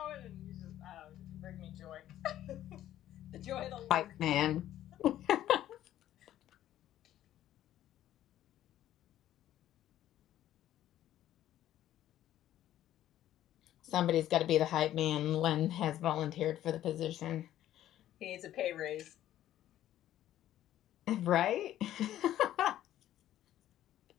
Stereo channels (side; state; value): right; quieter; 12.6 dB